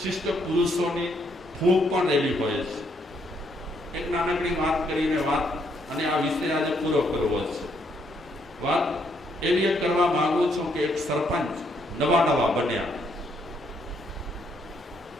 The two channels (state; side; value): normal; both; correlation 0.72